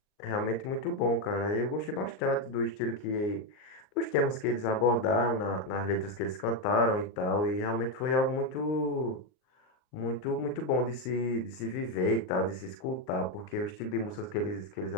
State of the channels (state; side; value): late; right; 39 ms